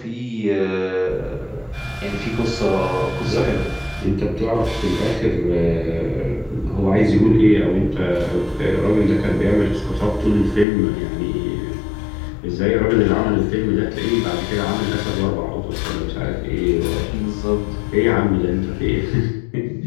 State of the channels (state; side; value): drops out; right; at 10.7 s